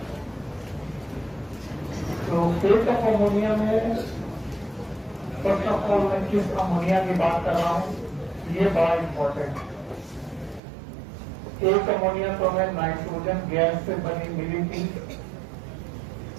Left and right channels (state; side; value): drops out; left; at 10.6 s